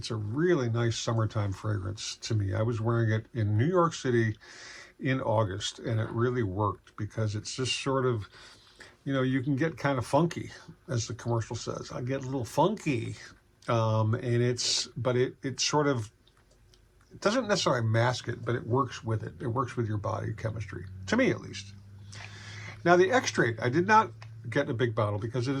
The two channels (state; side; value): identical; both; correlation 1.00